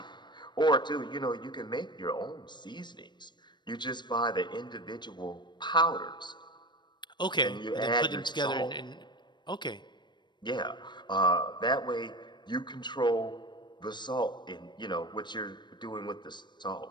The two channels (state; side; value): late; right; 0.22 ms